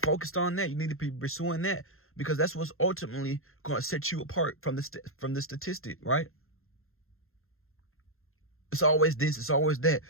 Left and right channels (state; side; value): late; right; 0.61 ms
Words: on that. You need to be pursuing that, because that's what's ultimately going to set you apart from the statistic, right? It's always this. It's always that.